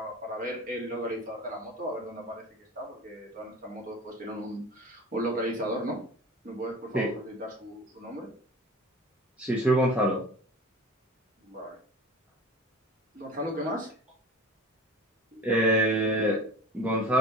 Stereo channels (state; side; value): normal; both; correlation 0.37